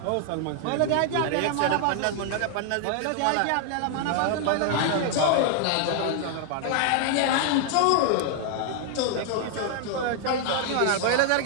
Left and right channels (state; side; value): different; both; correlation 0.00